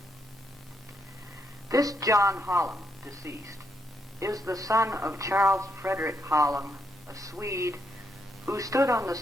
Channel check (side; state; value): both; normal; correlation 0.77